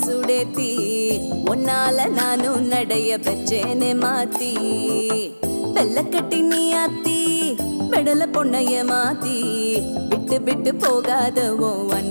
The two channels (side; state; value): both; inverted; correlation -1.00